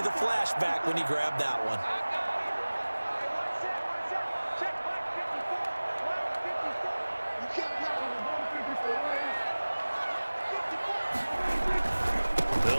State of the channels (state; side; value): inverted; both; correlation -1.00